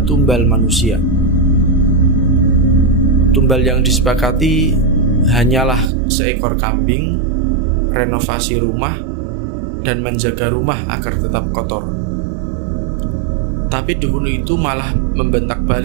tumbal manusia. Tumbal yang disepakati hanyalah seekor kambing, renovasi rumah, dan menjaga rumah agar tetap kotor. Tapi dukun itu malah membentak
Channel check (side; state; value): left; drops out; at 5.9 s